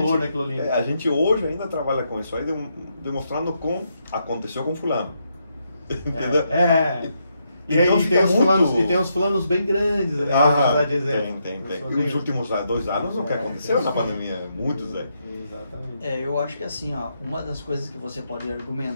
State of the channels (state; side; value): inverted; both; correlation -0.79